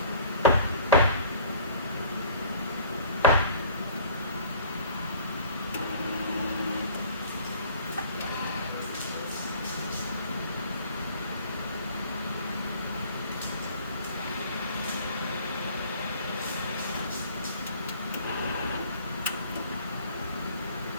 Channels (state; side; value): inverted; both; correlation -0.50